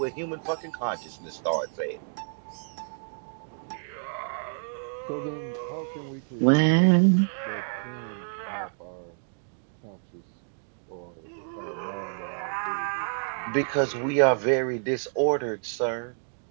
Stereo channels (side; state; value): left; silent; 59 dB below the other